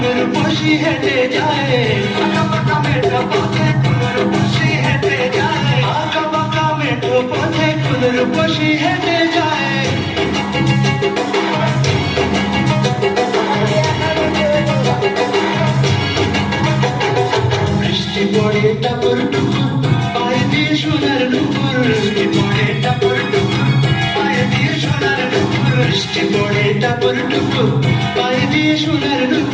বসি হেঁটে যায় আঁকা পাকা মেঠো পথে কোনের বসি হেঁটে যায় আঁকা পাকা মেঠো পথে কোনের বসি হেঁটে যায় বৃষ্টি পড়ে টাপুর টুপুর পায়ে দিয়ে সোনার নুপুর বৃষ্টি পড়ে টাপুর টুপুর পায়ে দিয়ে সোনার নুপুর বৃষ্টি পড়ে টাপুর টুপুর পায়ে দিয়ে সোনার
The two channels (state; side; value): identical; both; correlation 1.00